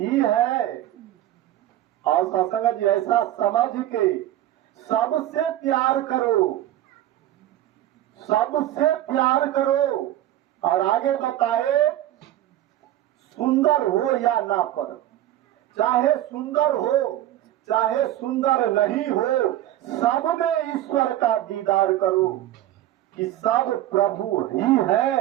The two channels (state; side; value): quieter; left; 13.4 dB